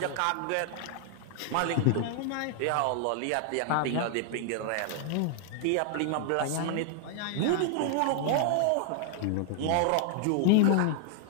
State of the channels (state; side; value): different; both; correlation 0.00